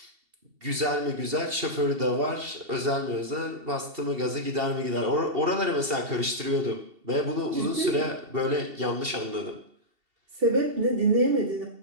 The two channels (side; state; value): left; late; 2.7 ms